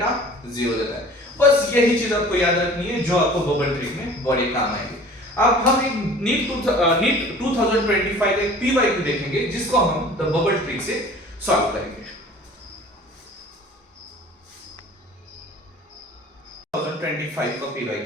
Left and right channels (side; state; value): both; normal; correlation 0.46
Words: 0 देता है। बस यही चीज आपको याद रखनी है जो आपको बबल ट्रिक में बड़े काम आएगी। अब हम एक नीट 2025 एक पीवाईक्यू देखेंगे जिसको हम द बबल ट्रिक से सॉल्व करेंगे। 2025 का